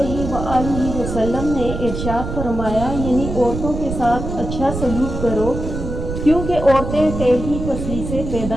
वसल्लम ने इरशाद फरमाया, यानी औरतों के साथ अच्छा सलूक करो क्योंकि औरतें टेढ़ी पसली से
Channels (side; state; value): right; noise; rumble, 6 dB below the sound